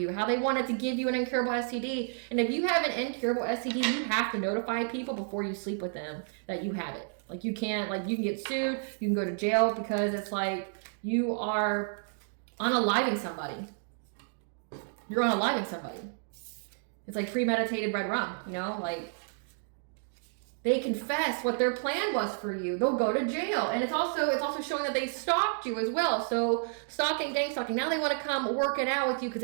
How they wanted to give you an incurable STD. And if you have an incurable STD, you have to notify people before you sleep with them that you have it. Like you can't, like you can get sued, you can go to jail because it's like you are unaliving somebody. You're unaliving somebody. It's like premeditated red rum, you know, like they confess what their plan was for you. They'll go to jail. And it's also showing that they stalked you as well. So stalking, gang stalking. Now they want to come work it out with you because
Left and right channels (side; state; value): left; silent; digital silence